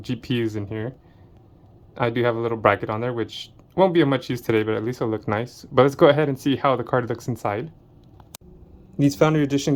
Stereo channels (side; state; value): both; identical; correlation 1.00